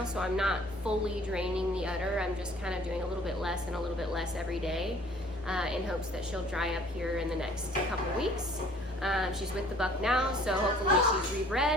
so I'm not fully draining the udder. I'm just kind of doing a little bit less and a little bit less every day in hopes that she'll dry up here in the next couple weeks. She's with the buck now, so hopefully she's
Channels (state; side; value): normal; both; correlation 0.54